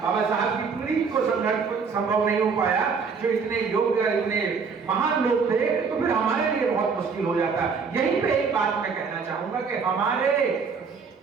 बाबा साहब की पीढ़ी को संभव नहीं हो पाया, जो इतने योग्य, इतने महान लोग थे, तो फिर हमारे लिए बहुत मुश्किल हो जाता। यहीं पे एक बात मैं कहना चाहूंगा कि हमारे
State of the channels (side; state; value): left; quieter; 5.4 dB